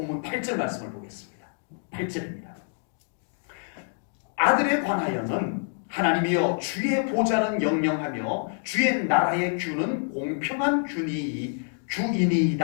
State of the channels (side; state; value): right; silent; 60 dB below the other